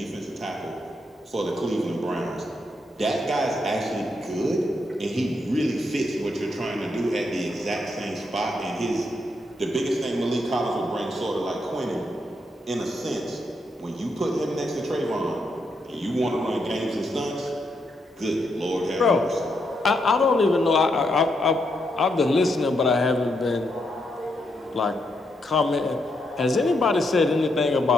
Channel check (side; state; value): both; normal; correlation 0.80